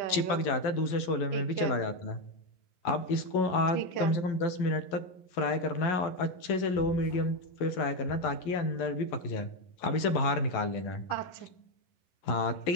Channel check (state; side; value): late; right; 11 ms